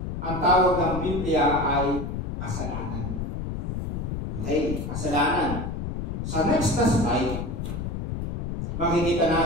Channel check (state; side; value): noise; left; rumble, 4 dB below the sound